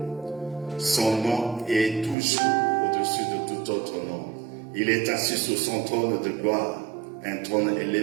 Son nom est toujours au-dessus de tout autre nom. Il est assis sur son trône de gloire, un trône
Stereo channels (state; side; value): drops out; left; at 2.1 s